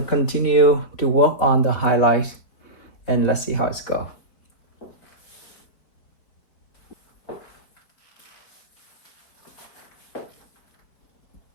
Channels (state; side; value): late; right; 4.8 ms